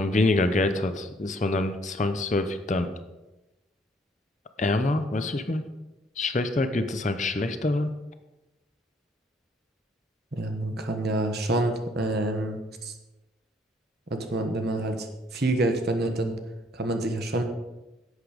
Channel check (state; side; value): normal; both; correlation 0.64